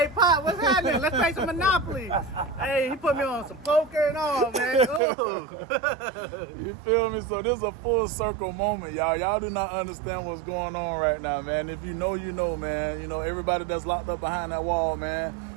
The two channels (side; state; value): left; drops out; at 5.0 s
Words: Pop, what's happening? Let's play some Monopoly. Hey, he put me on some poker and all, man. Ooh. You feel me? So this is a full circle moment, y'all. Y'all do not understand what's going on right now, man. If you know, you know, man. You know, everybody that's locked up behind that wall, man,